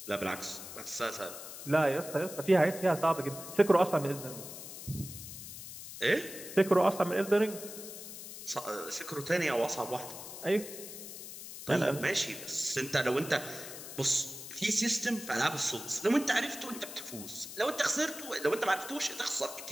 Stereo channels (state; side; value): noise; left; hiss, 11 dB below the sound